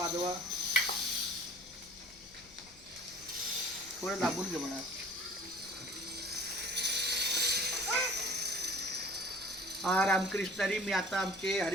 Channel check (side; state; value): left; noise; rumble, 25 dB below the sound